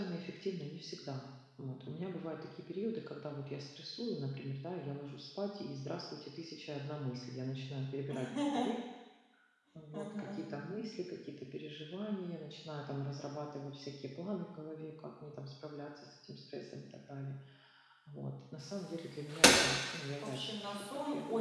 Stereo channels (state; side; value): identical; both; correlation 1.00